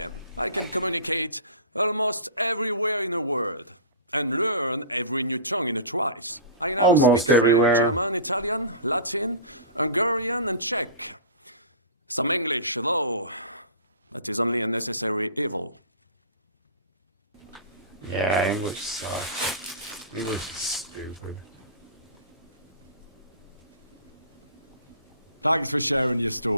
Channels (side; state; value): both; inverted; correlation -0.35